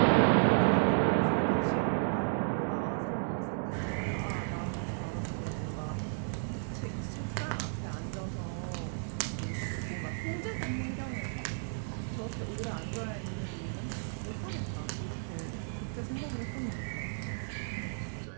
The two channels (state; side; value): silent; left; digital silence